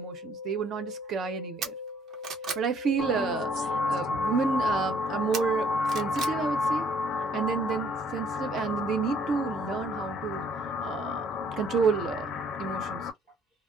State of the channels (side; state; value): both; normal; correlation 0.62